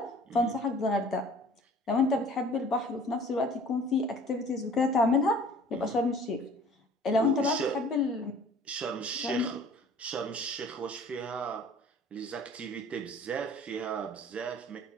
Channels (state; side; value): normal; both; correlation 0.50